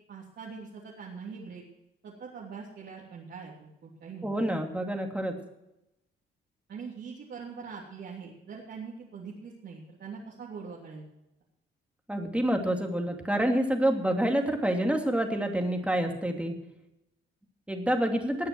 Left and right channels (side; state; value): both; normal; correlation 0.85